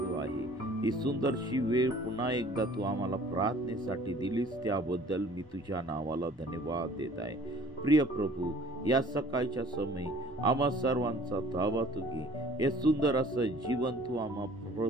आहे. ही सुंदरशी वेळ पुन्हा एकदा तू आम्हाला प्रार्थनेसाठी दिलीस त्याबद्दल मी तुझ्या नावाला धन्यवाद देत आहे. प्रिय प्रभू, या सकाळच्या समयी आम्हा सर्वांचा ताबा तू घे. हे सुंदर असं जीवन तू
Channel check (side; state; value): both; normal; correlation 0.51